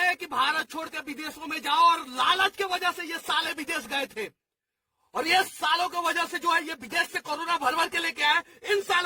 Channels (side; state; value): both; identical; correlation 1.00